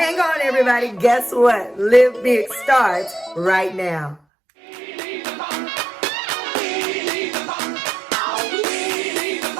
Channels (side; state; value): left; drops out; at 4.2 s